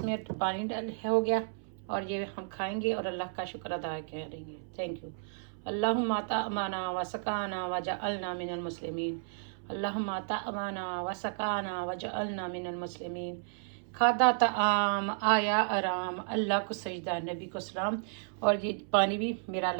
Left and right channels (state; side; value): silent; left; 56 dB below the other